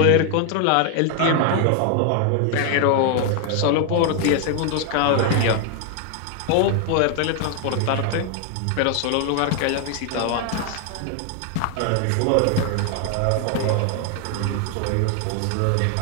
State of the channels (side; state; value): both; different; correlation 0.00